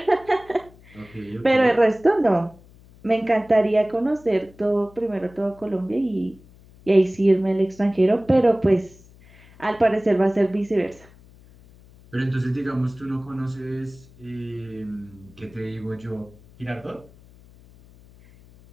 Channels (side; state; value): left; noise; hum, 25 dB below the sound